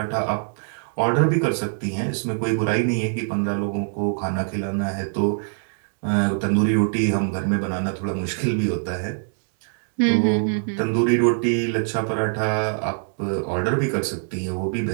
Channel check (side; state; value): left; silent; digital silence